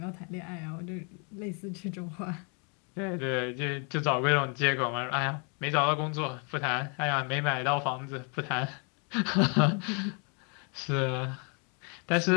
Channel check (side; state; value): right; quieter; 36.5 dB